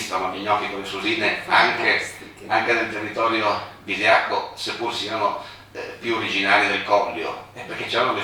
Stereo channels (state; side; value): identical; both; correlation 1.00